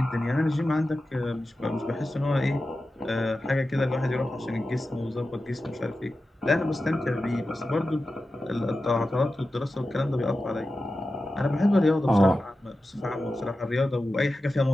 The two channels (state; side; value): normal; both; correlation 0.93